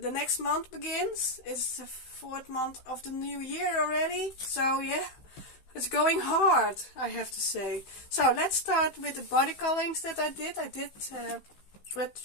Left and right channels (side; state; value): right; late; 15 ms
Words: next month begins. It's the 4th month of the new year already. So yeah, it's going hard, I have to say. So let's start with the body colorings that I did. I did with